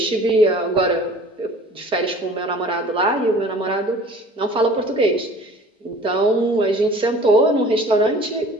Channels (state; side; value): normal; both; correlation 0.47